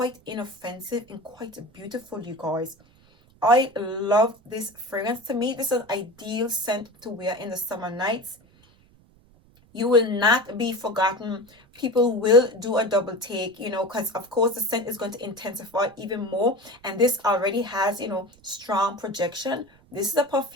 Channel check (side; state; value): right; noise; rumble, 29 dB below the sound